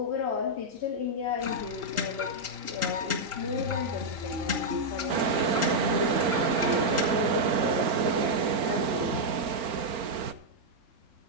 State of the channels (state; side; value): late; left; 4.4 ms